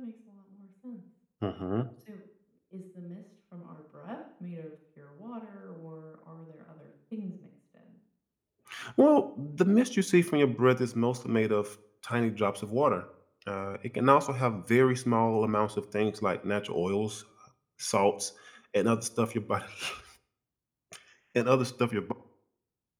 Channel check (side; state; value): both; identical; correlation 1.00